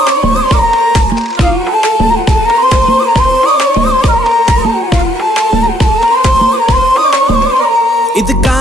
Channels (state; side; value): normal; both; correlation 0.71